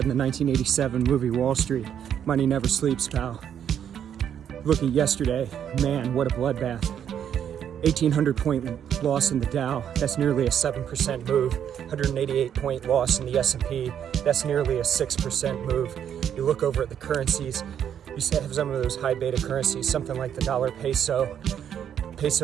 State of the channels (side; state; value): left; quieter; 9.1 dB